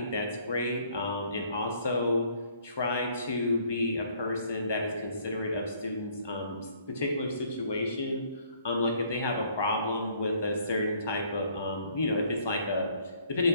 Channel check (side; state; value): both; inverted; correlation -0.62